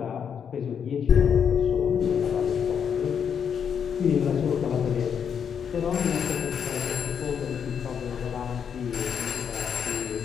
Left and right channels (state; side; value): quieter; right; 7.5 dB